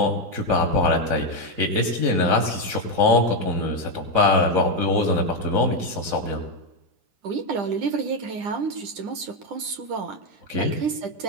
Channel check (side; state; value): left; late; 9.9 ms